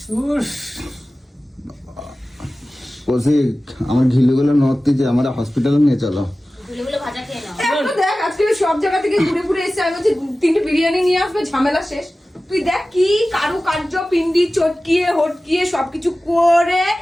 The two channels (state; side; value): normal; both; correlation 0.96